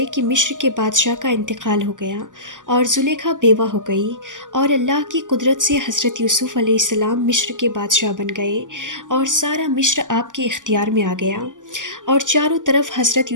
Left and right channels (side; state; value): left; late; 0.87 ms